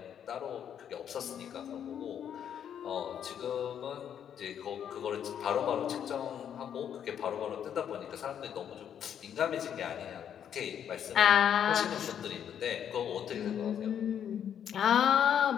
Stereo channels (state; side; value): quieter; right; 9.0 dB